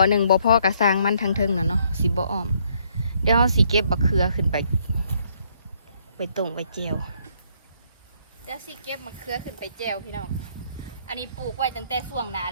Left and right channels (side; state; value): both; inverted; correlation -0.68